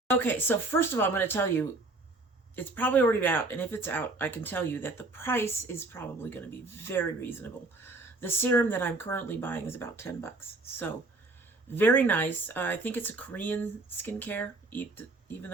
Okay, so first of all, I'm going to tell you, it's probably already out, and if it's out, I can tell you that the price is probably going to be very reasonable. The serum that I'm currently buying is about $10, so very nice. I think it's a Korean skincare, even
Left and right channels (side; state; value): left; quieter; 3.1 dB